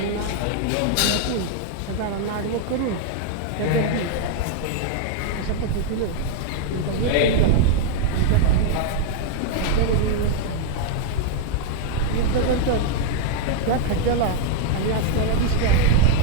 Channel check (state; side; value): different; both; correlation -0.01